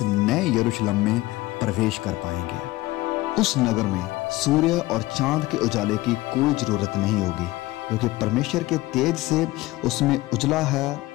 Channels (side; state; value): right; quieter; 18.9 dB